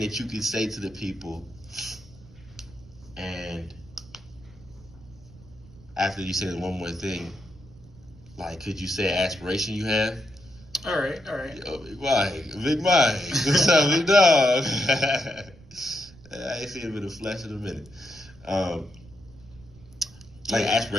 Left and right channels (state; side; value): noise; right; rumble, 22 dB below the sound